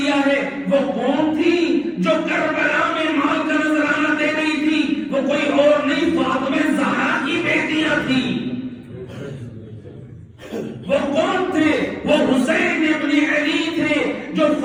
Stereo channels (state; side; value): identical; both; correlation 1.00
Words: ہے۔ وہ کون تھی جو کربلا میں مال کا نذرانہ دے رہی تھی؟ وہ کوئی اور نہیں، فاطمہ زہرا کی بیٹیاں تھی۔ وہ کون تھے؟ وہ حسین ابن علی تھے،